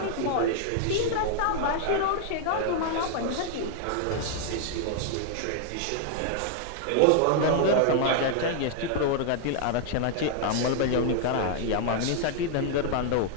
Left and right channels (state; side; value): different; both; correlation 0.00